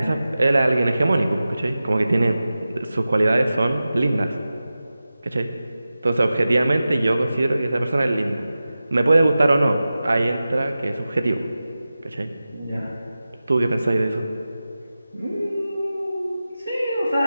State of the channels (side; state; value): both; inverted; correlation -0.94